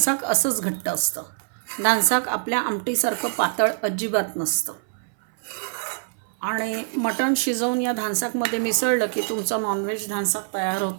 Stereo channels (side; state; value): left; silent; 62 dB below the other